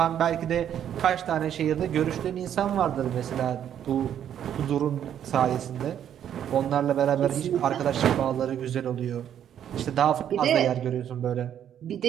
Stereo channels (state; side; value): quieter; left; 9.8 dB